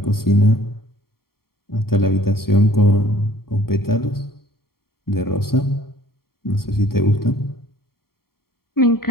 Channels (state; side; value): late; right; 0.93 ms